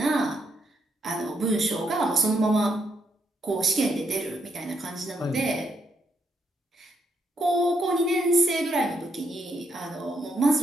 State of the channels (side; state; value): both; normal; correlation 0.77